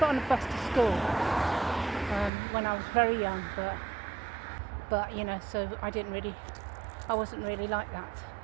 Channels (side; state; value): left; drops out; at 2.3 s